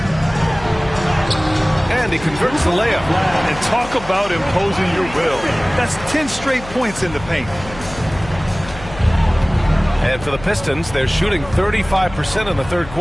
And he converts the layup. And talk about imposing your will. That's 10 straight points in the paint. And for the Pistons, they're shooting 35% in the third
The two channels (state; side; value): noise; left; hum, 15 dB below the sound